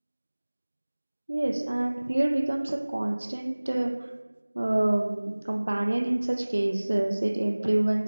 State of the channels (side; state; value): both; inverted; correlation -1.00